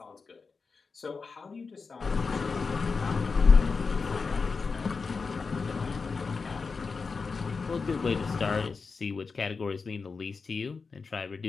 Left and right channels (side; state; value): right; quieter; 4.7 dB